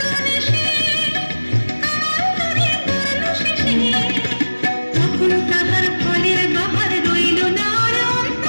দেশে ধরে পড়লো শেষে। তখন তাহার ফলের বাহার রইল না আর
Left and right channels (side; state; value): both; inverted; correlation -1.00